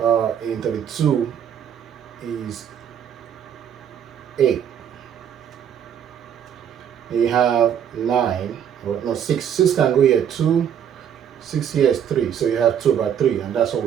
in 32 is 8. You have 9, or no, 6. 6 can go here, 2. 6 here is 3, so you have 2 by 3, and that's what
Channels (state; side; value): quieter; left; 8.8 dB